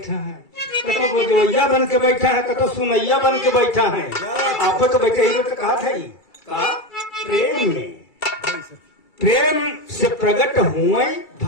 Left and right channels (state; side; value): late; right; 2.3 ms